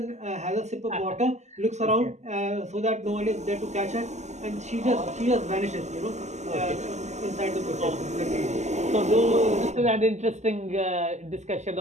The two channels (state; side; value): late; left; 0.33 ms